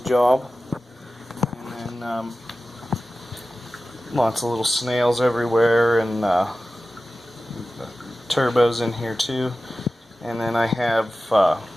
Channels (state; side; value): normal; both; correlation 0.95